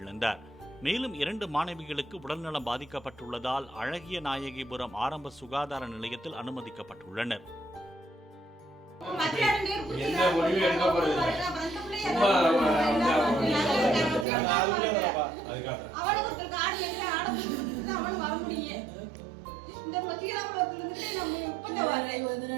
மேலும் 2 மாணவிகளுக்கு உடல்நலம் பாதிக்கப்பட்டுள்ளதால் அழகிய நாயகிபுரம் ஆரம்ப சுகாதார நிலையத்தில் அனுமதிக்கப்பட்டுள்ளனர்.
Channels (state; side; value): drops out; left; at 14.2 s